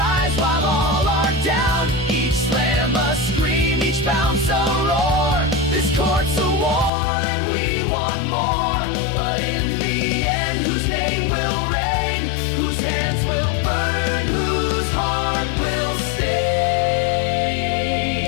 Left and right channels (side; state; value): right; drops out; at 6.9 s